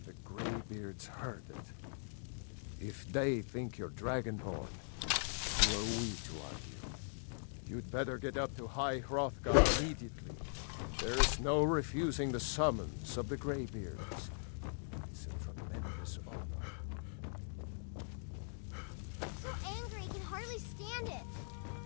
the Greybeards heard it. If they think you're Dragonborn, who are we to argue? You'd better get up to High Hrothgar immediately. There is no refusing the summons of the Greybeards. It's a tremendous honor. I'm so angry, I can hardly stand it.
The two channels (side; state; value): right; silent; digital silence